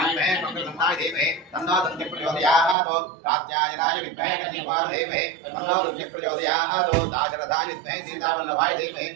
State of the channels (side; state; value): left; drops out; at 2.8 s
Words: विद्महे मंगलगन्धाय धीमहि तन्नो दन्ति प्रचोदयात् कात्यायनाय विद्महे कन्यकाय धीमहि तन्नो रुद्र प्रचोदयात् दाशरथाय विद्महे सीतावल्लभाय धीमहि